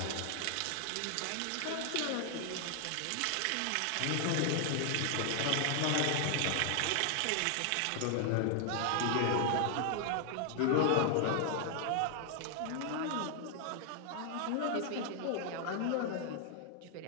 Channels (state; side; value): different; both; correlation 0.00